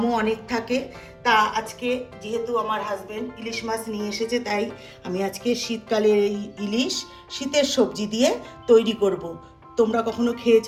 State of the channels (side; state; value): both; identical; correlation 1.00